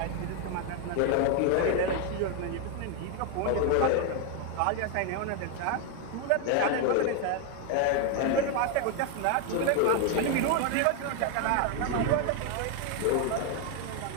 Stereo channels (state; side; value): different; both; correlation 0.01